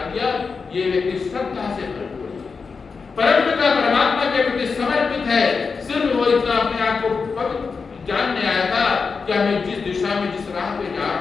दिया ये व्यक्ति श्रद्धा से भरपूर है, परमपिता परमात्मा के प्रति समर्पित है। सिर्फ वो इतना अपने आप को पवित्र जानने आया था कि मैं जिस दिशा में जिस राह पे जा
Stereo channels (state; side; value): quieter; right; 5.0 dB